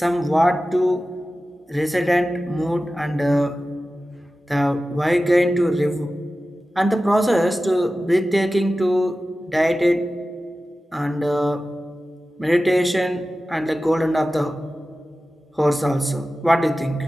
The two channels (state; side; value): normal; both; correlation 0.95